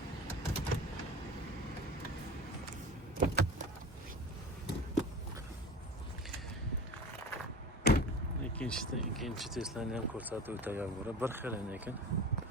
İkinci Tesla'ni ham ko'rsatib o'tagan bo'lib, bir xil ekan.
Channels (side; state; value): both; normal; correlation 0.35